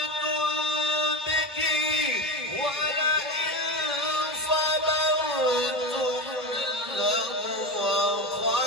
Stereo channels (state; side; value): normal; both; correlation 0.21